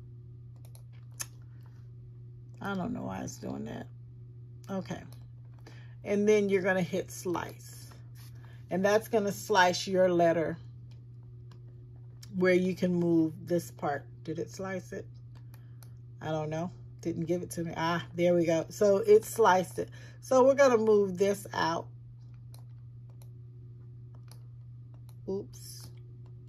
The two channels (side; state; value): both; identical; correlation 1.00